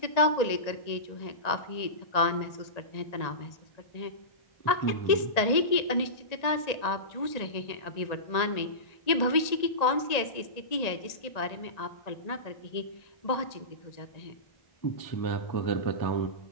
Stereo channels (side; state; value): right; late; 1.8 ms